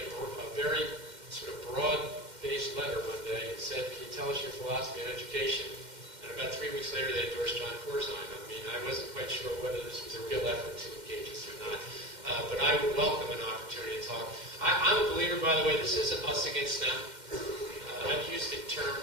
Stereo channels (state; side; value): late; left; 2.1 ms